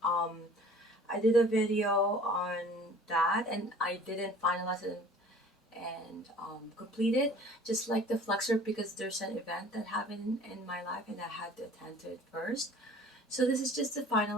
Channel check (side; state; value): both; normal; correlation 0.48